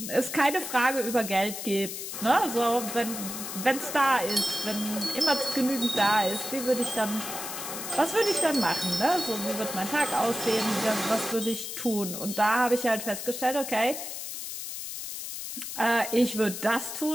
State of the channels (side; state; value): left; noise; hiss, 7 dB below the sound